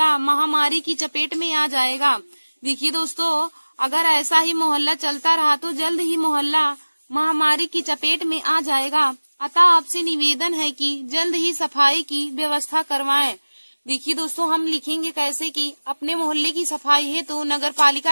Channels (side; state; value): both; inverted; correlation -1.00